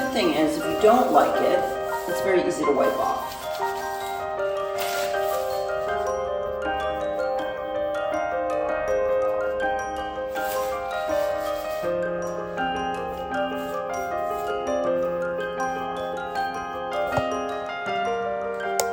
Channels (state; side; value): identical; both; correlation 1.00